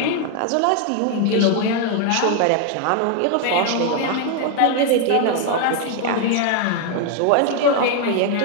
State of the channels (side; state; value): both; different; correlation 0.00